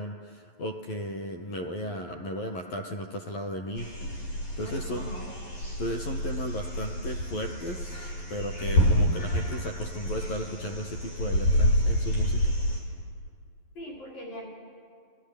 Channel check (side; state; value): right; late; 11 ms